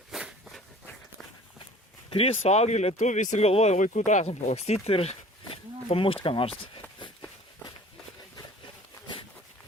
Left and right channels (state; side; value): normal; both; correlation 0.47